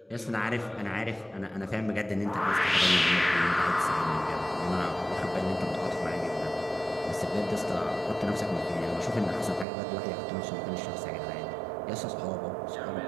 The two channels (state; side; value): drops out; left; at 9.7 s